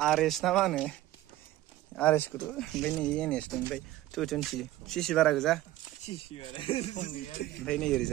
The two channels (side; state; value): left; quieter; 15.3 dB